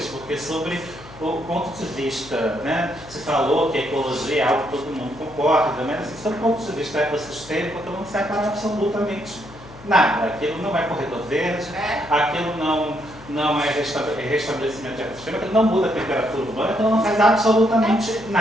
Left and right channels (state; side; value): noise; left; hum, 19 dB below the sound